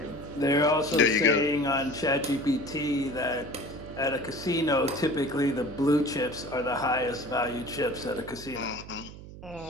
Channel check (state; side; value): noise; right; hum, 15 dB below the sound